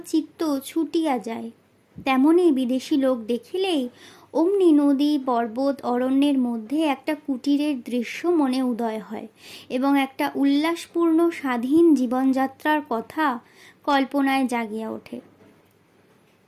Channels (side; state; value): both; identical; correlation 1.00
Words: চিত্ত ছুটিয়া যায়। তেমনই বিদেশি লোক দেখিলেই অমনি নদী, পর্বত, অরণ্যের মধ্যে একটা কুটিরের দৃশ্য মনে উদয় হয় এবং একটা উল্লাসপূর্ণ স্বাধীন জীবনযাত্রার কথা কল্পনায় জাগিয়া ওঠে।